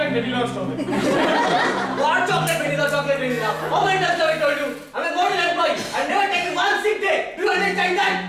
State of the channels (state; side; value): identical; both; correlation 1.00